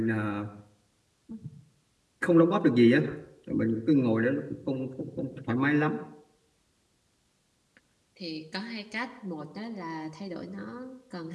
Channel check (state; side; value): identical; both; correlation 1.00